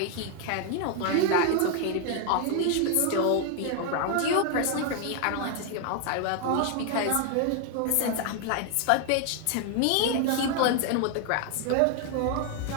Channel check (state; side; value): different; both; correlation 0.01